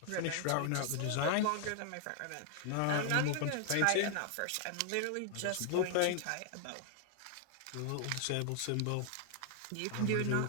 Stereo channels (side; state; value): both; different; correlation 0.00